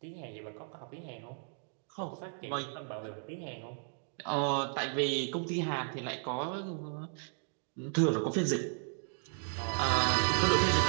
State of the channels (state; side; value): silent; left; 55 dB below the other